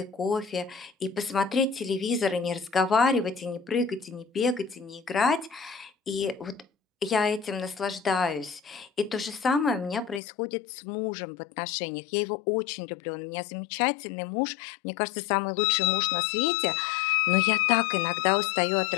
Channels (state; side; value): drops out; right; at 10.2 s